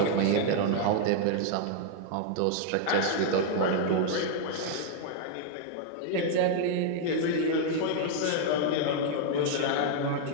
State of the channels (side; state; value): both; different; correlation 0.00